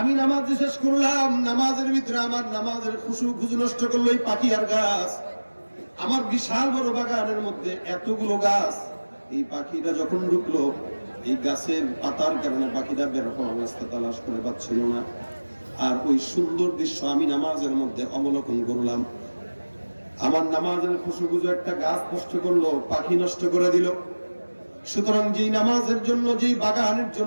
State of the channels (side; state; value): both; inverted; correlation -1.00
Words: নামাজ শেষ করলাম, নামাজের ভিতরে আমার নামাজের খুশু নষ্ট করলো এই পাখি আর গাছ। আমার বিশাল বড় বাগানের মধ্যে এতগুলো গাছ, এই পাখিটা যখন ঢুকলো, এই গাছের পাতার কারণে পাখিটা বের হওয়ার রাস্তা তালাশ করে পাচ্ছিল না। আর ওই সুন্দর দৃশ্য আমি নামাজের মধ্যে অবলোকন করলাম। আমার নামাজের খুশু একটা গাছ নষ্ট করলো, পাখি নষ্ট করে দিল। সুতরাং যেই নামাজের জন্য, যেই বাগানের